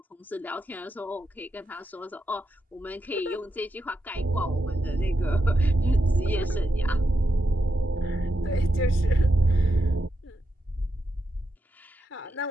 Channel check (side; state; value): both; normal; correlation 0.85